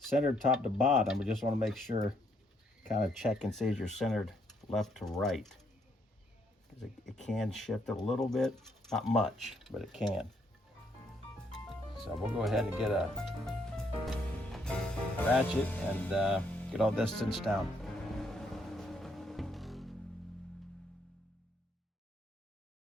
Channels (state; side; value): normal; both; correlation 0.72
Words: top to bottom. We just want to make sure, kind of check and see if you're centered left to right. Because it can shift a little bit. Not much, but it can. So we'll go ahead and get a ratchet and get all this cinched down.